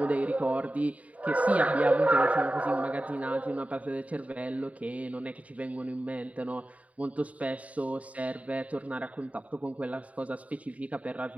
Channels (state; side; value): late; left; 0.068 ms